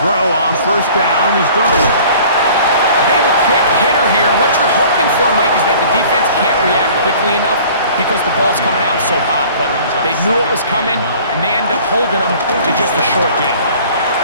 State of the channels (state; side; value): inverted; both; correlation -0.49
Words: throw on 1st down is done. A bit of a quick hitter here. What you're hoping for, Mike, is that the defense can't react quickly enough because the ball's coming out so hot. But they knew it was coming, and they end up holding them to just a short gain.